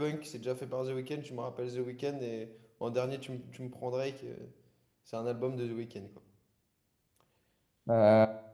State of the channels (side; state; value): both; identical; correlation 1.00